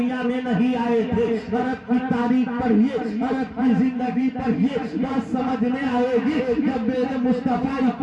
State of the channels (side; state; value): both; identical; correlation 1.00